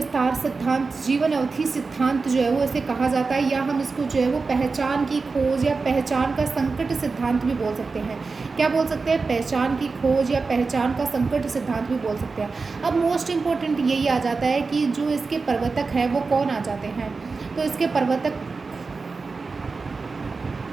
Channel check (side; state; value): left; quieter; 4.3 dB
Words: सिद्धांत, जीवन अवधि सिद्धांत जो है वो इसे कहा जाता है, या हम इसको जो है वो पहचान की खोज या पहचान का संकट सिद्धांत भी बोल सकते हैं। क्या बोल सकते हैं? पहचान की खोज या पहचान का संकट सिद्धांत भी बोल सकते हैं। अब मोस्ट इम्पोर्टेंट यही आ जाता है कि जो इसके प्रवर्तक है वो कौन आ जाते हैं। तो इसके